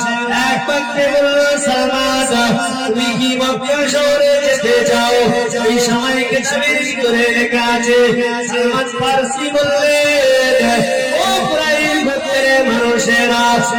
এক বাক্যে বলল সালমান তুমি কি মক্কা শহরে যেতে চাও? এই সময় কিতাবের ভিতরে লেখা আছে সালমান ফারসি বললেন ও কুরাইশ গোত্রের মানুষেরা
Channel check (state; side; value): identical; both; correlation 1.00